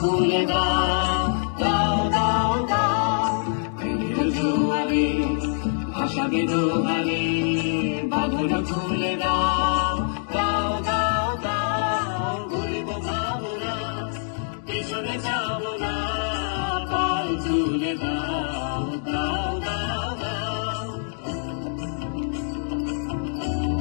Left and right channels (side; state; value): right; silent; digital silence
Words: দাও দাও দাও দাও প্রেমের জোয়ারে ভাসাবে দোহারে বাঁধন খুলে দাও দাও দাও দাও ঘুরিব ভাবনা পিছনে যাব না পাল তুলে দাও দাও দাও দাও